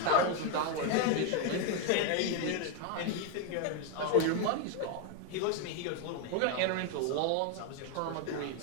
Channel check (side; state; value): both; different; correlation 0.01